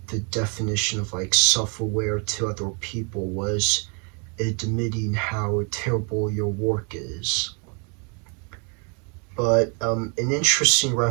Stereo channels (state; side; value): quieter; left; 35.6 dB